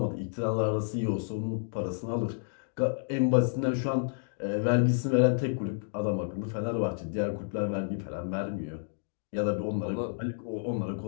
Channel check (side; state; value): right; silent; digital silence